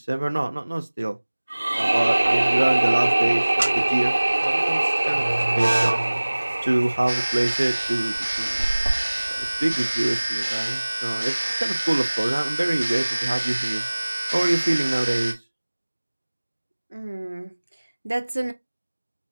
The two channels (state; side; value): inverted; both; correlation -1.00